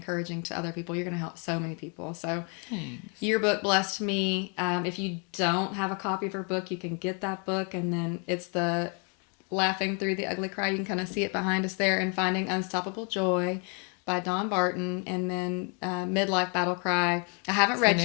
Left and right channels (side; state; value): right; quieter; 36.7 dB